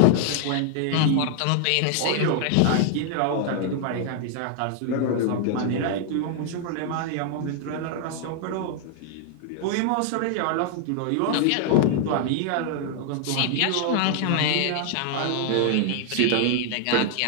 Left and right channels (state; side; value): different; both; correlation 0.00